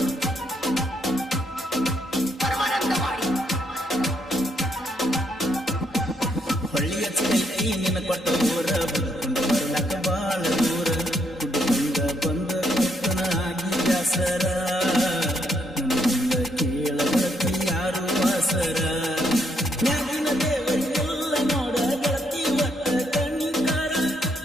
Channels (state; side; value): normal; both; correlation 0.74